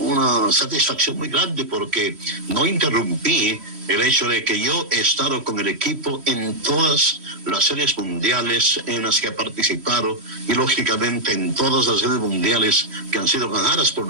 satisfacción muy grande, porque no interrumpí el hecho de que yo he estado con el equipo en todas las series mundiales en las que ha participado, y lógicamente en todas las series mundiales que han sido ganadas por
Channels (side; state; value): left; late; 3.1 ms